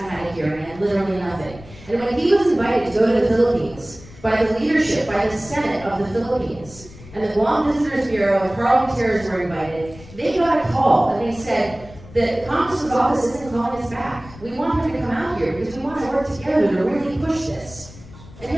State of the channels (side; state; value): left; noise; rumble, 19 dB below the sound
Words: had a hearing, and literally nothing. And when he was invited to go to the Philippines by the leadership, by the Senate of the Philippines, and the Guam Visitors Bureau and parliamentarians were invited, they got a call and they said, the Congressman's office isn't calling us back. We want him to come out here because we want to work together to really push this. And